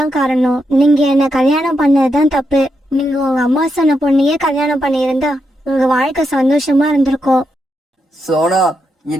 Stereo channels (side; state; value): both; normal; correlation 0.83